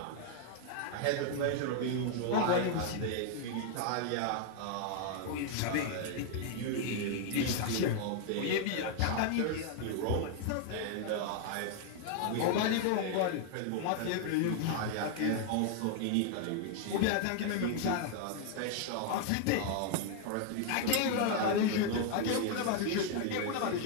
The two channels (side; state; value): both; different; correlation 0.00